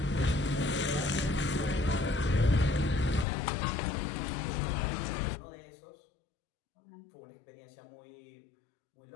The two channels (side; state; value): right; drops out; at 3.2 s